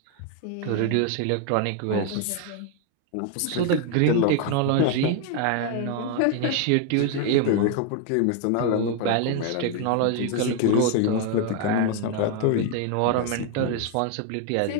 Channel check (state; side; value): different; both; correlation 0.01